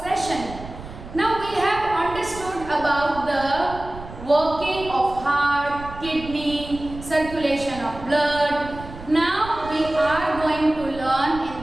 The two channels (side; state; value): right; noise; rumble, 14 dB below the sound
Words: session. Now we have understood about the working of heart, kidney, circulation of blood. Now we are going to learn